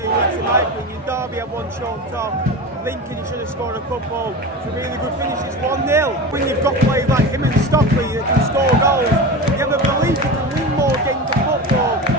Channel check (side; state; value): both; normal; correlation 0.27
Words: weeks in my opinion. Derby had one chalked off. Lincoln, he should have scored a couple. It's a really good finish. It's 1-0. When you've got players like him and Stockley that can score goals, you have a belief you can win more games of football.